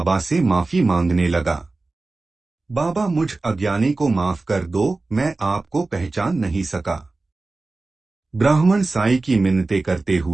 से माफी मांगने लगा। बाबा, मुझ अज्ञानी को माफ कर दो, मैं आपको पहचान नहीं सका। ब्राह्मण साईं की मिन्नतें करते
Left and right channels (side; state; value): left; quieter; 3.4 dB